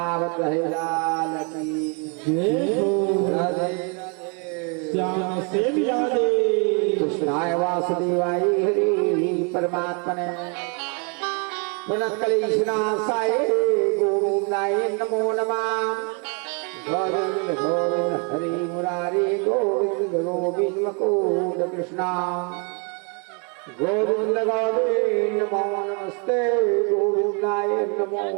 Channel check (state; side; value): quieter; left; 35.9 dB